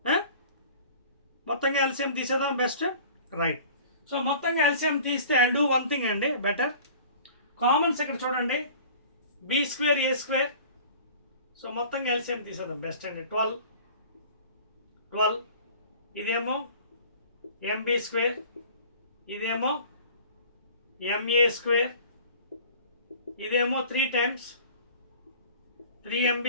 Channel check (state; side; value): inverted; both; correlation -0.45